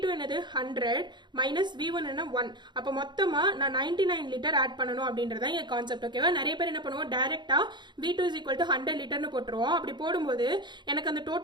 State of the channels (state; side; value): late; left; 0.22 ms